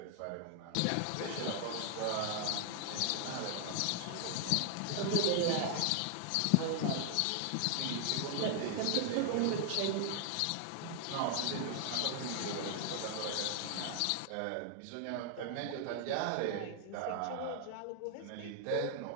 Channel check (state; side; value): different; both; correlation 0.00